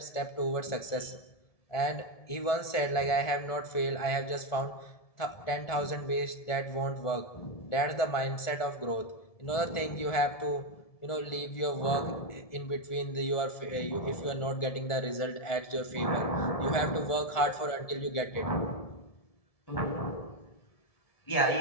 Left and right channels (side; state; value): right; late; 1.7 ms